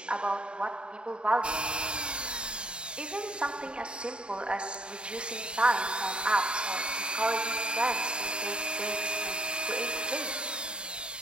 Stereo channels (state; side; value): late; left; 0.052 ms